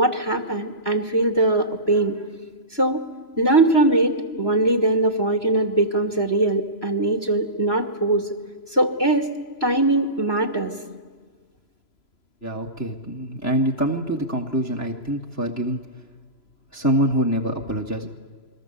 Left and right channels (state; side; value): late; right; 3.0 ms